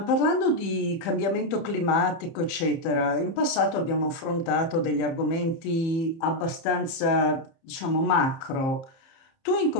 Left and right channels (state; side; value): late; right; 30 ms